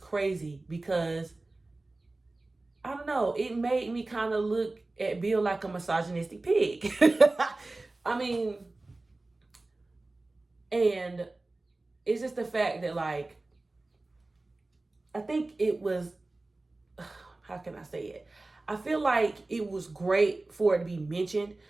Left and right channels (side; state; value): left; quieter; 3.0 dB